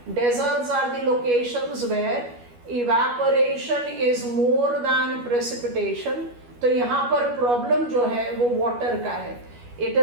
Deserts are the locations where evaporation is more than precipitation. तो यहाँ पर प्रॉब्लम जो है वो वाटर का है. It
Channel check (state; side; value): late; left; 12 ms